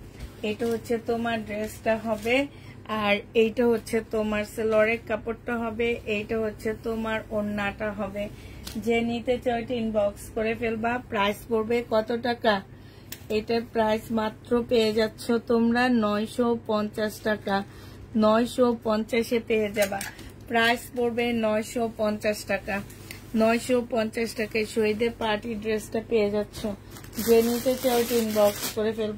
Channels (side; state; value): both; identical; correlation 1.00